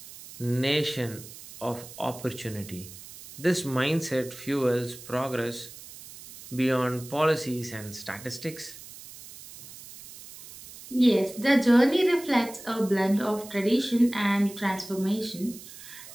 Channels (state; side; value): noise; right; hiss, 16 dB below the sound